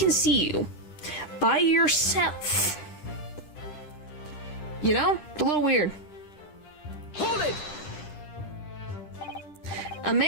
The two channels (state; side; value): late; right; 10 ms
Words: see you by yourself? You know? A little weird. Hold it! A